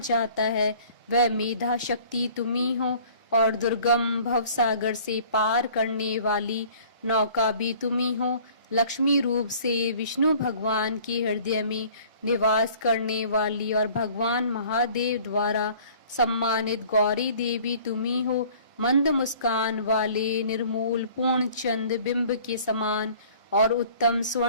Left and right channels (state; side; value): inverted; both; correlation -0.51